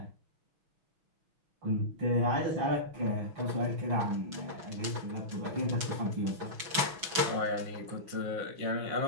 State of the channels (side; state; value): left; late; 6.1 ms